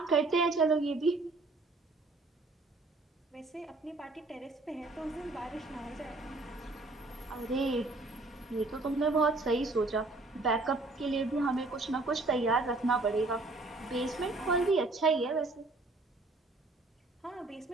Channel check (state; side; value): quieter; left; 3.2 dB